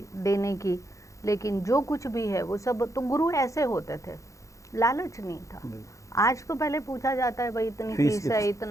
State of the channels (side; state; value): right; late; 0.15 ms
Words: देने की, लेकिन जो कुछ भी है वो सब तो गुरु ऐसे होते थे, लालच नहीं था। आज तो पहले पूछा जाता है भाई इतनी फीस है,